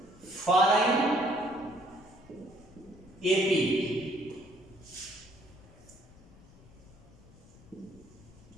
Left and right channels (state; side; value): noise; left; rumble, 23 dB below the sound